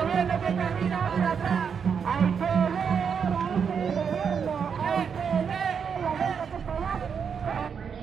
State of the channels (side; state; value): left; quieter; 6.8 dB